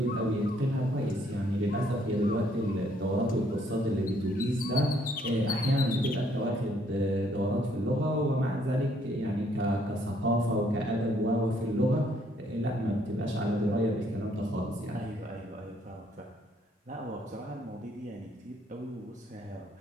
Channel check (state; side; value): normal; both; correlation 0.67